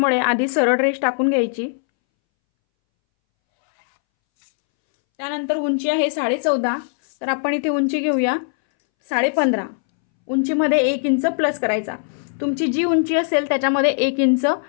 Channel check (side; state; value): right; silent; 64 dB below the other